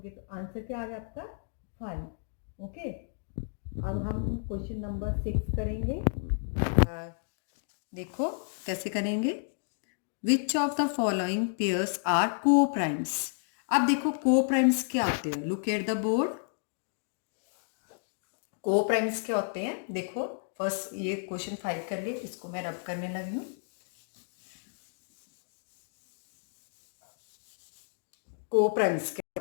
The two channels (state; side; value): silent; right; digital silence